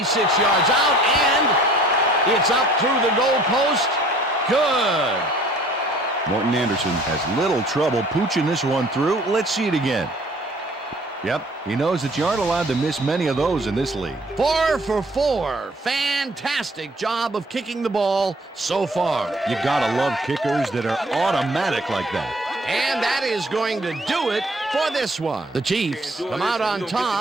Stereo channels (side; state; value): both; normal; correlation 0.55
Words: yards out, and it's up through the goal post. Good. Morton Anderson has little trouble pooching this one through. Let's see it again. Yep, he knows that you aren't allowed to miss many of those in this league. 4 for 4. Fantastic job of kicking the ball so far. You gotta love kickers that are automatic like that. And that is going to do it for this one. The Chiefs come out on